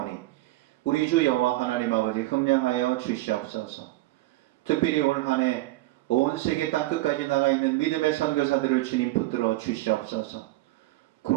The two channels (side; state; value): left; quieter; 18.7 dB